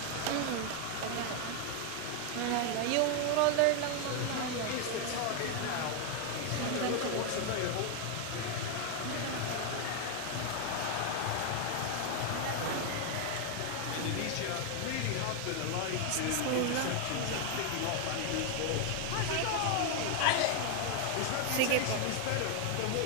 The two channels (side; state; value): both; different; correlation 0.01